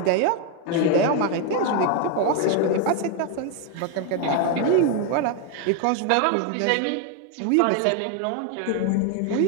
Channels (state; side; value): different; both; correlation 0.01